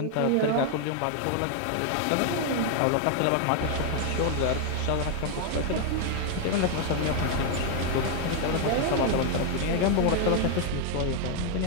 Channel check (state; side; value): different; both; correlation 0.00